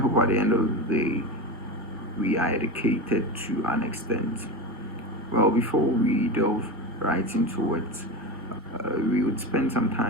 at the end of the day, we are educated to an extent. Well, before we delve right into it, we would spend some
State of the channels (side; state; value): both; normal; correlation 0.23